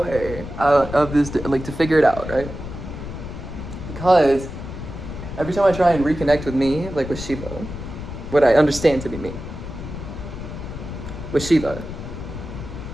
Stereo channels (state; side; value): noise; left; rumble, 9 dB below the sound